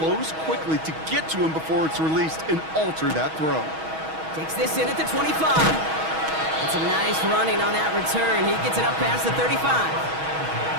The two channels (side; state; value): left; late; 6.3 ms